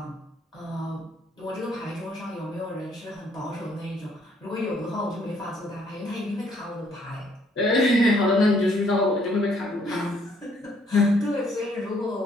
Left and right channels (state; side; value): normal; both; correlation 0.66